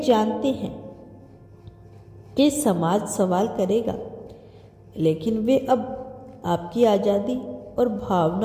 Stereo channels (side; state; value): both; identical; correlation 1.00